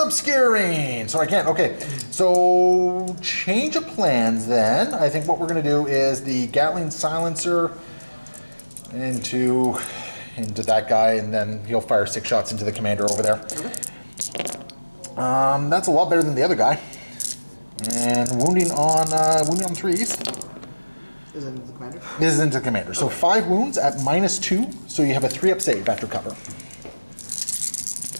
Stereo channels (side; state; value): both; inverted; correlation -1.00